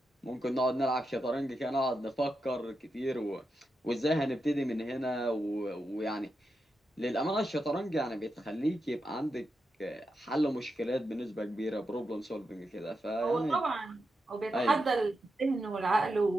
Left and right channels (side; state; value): both; normal; correlation 0.87